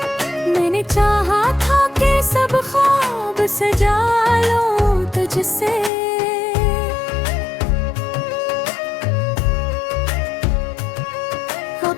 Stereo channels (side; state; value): right; drops out; at 5.9 s